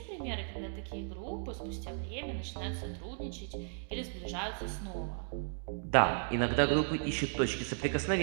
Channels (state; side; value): silent; left; digital silence